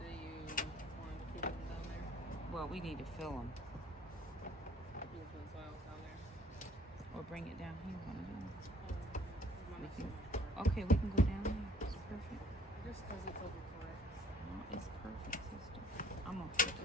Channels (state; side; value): normal; both; correlation 0.57